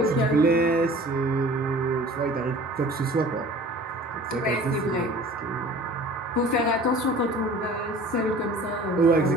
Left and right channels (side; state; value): both; normal; correlation 0.45